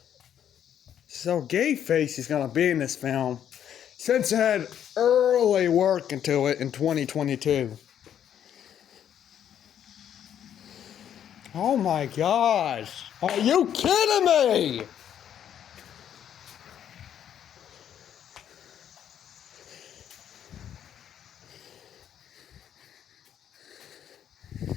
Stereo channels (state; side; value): quieter; right; 9.7 dB